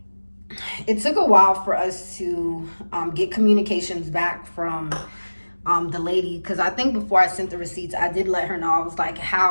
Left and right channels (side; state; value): both; inverted; correlation -1.00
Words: it took a while for us to get communications back from the lady, because I think before I sent the receipts, I did let her know. I was like,